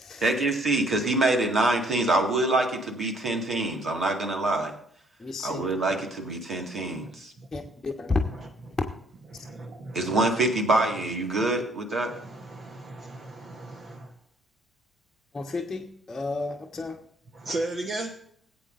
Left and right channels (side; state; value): both; normal; correlation 0.63